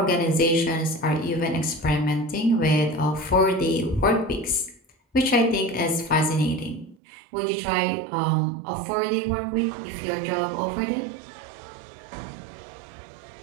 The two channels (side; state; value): left; drops out; at 7.0 s